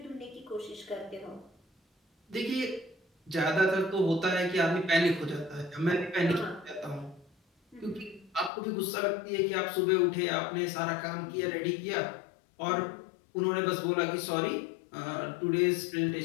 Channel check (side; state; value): right; drops out; at 8.5 s